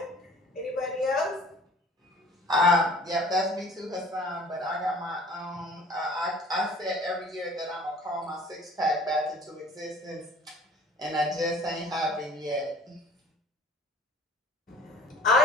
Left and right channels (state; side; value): normal; both; correlation 0.48